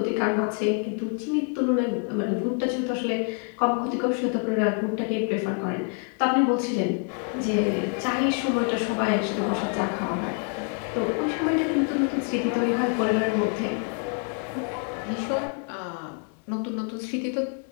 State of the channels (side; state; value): right; quieter; 39.7 dB